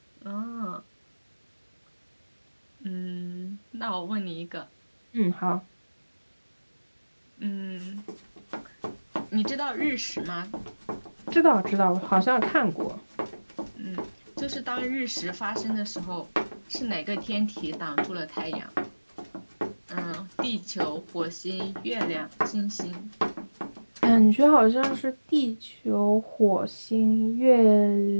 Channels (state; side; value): inverted; both; correlation -1.00